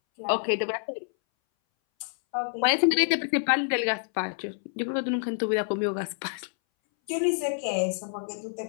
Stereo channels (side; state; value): right; silent; 60 dB below the other